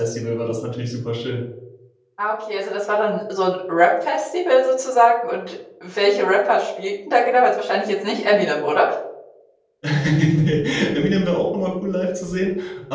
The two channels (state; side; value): identical; both; correlation 1.00